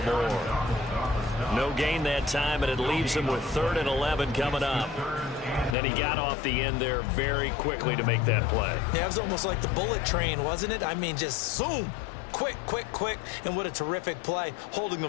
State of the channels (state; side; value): drops out; right; at 5.8 s